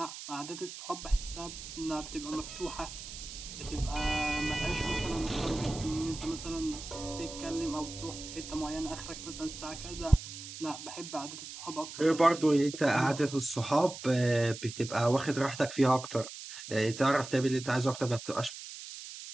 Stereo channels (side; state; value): right; noise; hiss, 11 dB below the sound